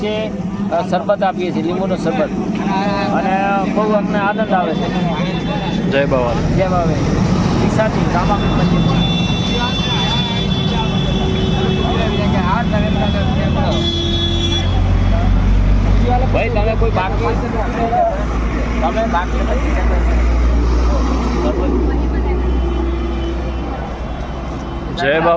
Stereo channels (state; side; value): identical; both; correlation 1.00